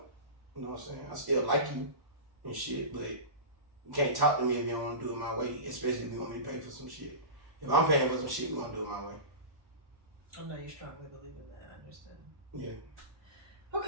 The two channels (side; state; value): left; late; 1.1 ms